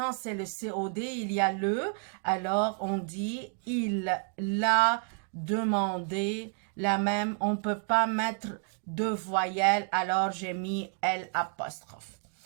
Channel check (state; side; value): quieter; left; 37.9 dB